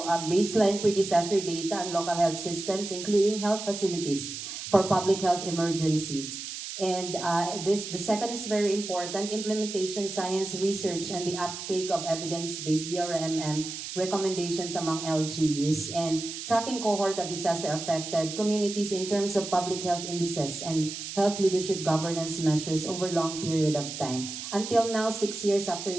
baseline pre-disaster data on local health systems, including health facilities for public health emergencies. And the second is very important, implementation, science, research, and the uptake of evidence-based DRMM recommendations among LGUs, and tracking cohort of disaster-affected communities in terms of public health indices and health leadership governance measures over long period of time. Until now, 6 years after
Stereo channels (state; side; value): noise; right; hiss, 8 dB below the sound